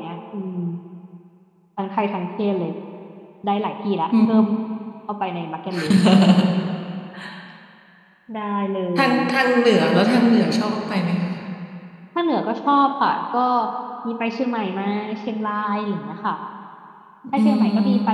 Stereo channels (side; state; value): both; identical; correlation 1.00